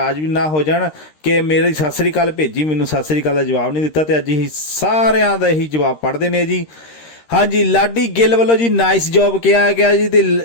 ਵੀ ਨਾ ਹੋ ਜਾਣ ਕਿ ਮੇਰੀ ਸਤਿ ਸ੍ਰੀ ਅਕਾਲ ਭੇਜੀ, ਮੈਨੂੰ ਸਤਿ ਸ੍ਰੀ ਅਕਾਲ ਦਾ ਜਵਾਬ ਨਹੀਂ ਦਿੱਤਾ, ਤੇ ਅੱਜ ਅਸੀਂ ਸਾਰਿਆਂ ਦਾ ਇਹੀ ਜਵਾਬ ਪੜ੍ਹਦੇ ਨੇ ਜੀ। ਹਾਂਜੀ, ਲਾਡੀ ਗਿੱਲ ਵੱਲੋਂ ਜੀ ਨਾਈਸ ਜੌਬ ਕਿਹਾ ਗਿਆ ਜੀ, ਤੇ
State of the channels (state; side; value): late; right; 13 ms